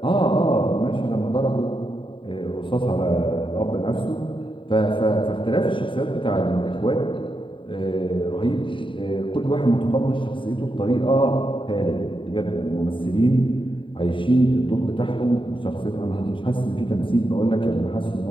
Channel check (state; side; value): late; right; 0.25 ms